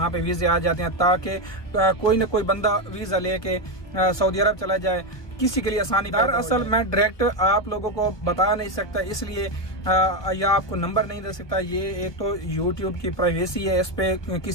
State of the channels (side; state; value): right; late; 1.3 ms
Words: पे वीज़े आ जाते हैं, ताकि कोई ना कोई बंदा वीज़ा लेके सऊदी अरब चला जाए, किसी के लिए आसानी। दरअसल मैं डायरेक्ट आप लोगों को बता नहीं सकता, इसलिए या आपको नंबर नहीं दे सकता। ये एक तो यूट्यूब की प्राइवेसी है, इस पे